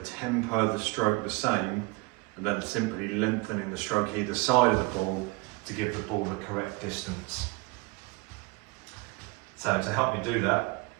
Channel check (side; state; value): left; quieter; 24.4 dB